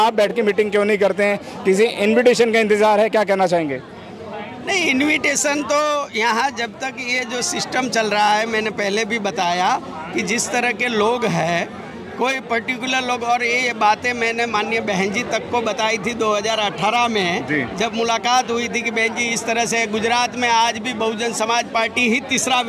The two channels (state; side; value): identical; both; correlation 1.00